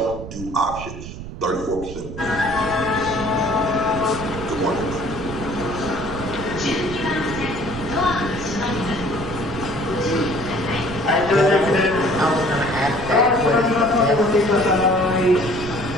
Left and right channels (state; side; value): noise; right; rumble, 10 dB below the sound